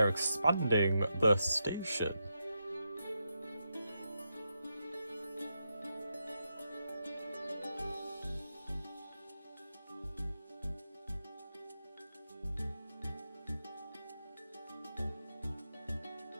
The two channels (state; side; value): inverted; both; correlation -0.85